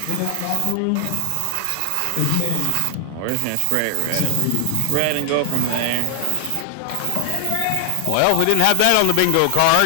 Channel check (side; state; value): both; different; correlation 0.00